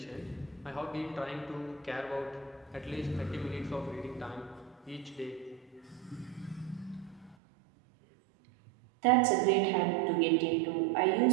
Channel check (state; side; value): drops out; left; at 7.4 s